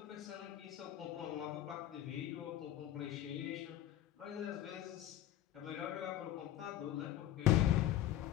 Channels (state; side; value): quieter; right; 12.8 dB